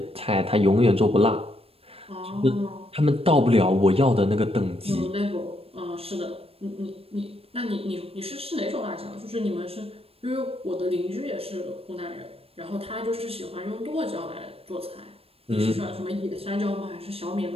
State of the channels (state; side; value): late; left; 0.28 ms